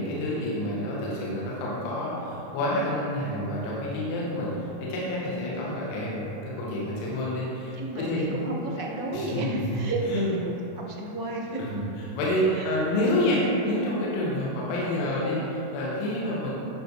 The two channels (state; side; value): late; right; 29 ms